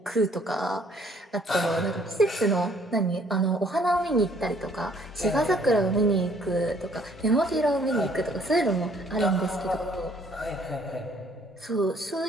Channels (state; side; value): normal; both; correlation 0.62